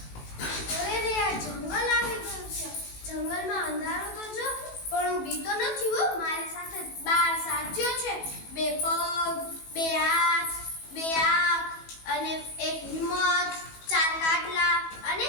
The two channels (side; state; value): right; late; 18 ms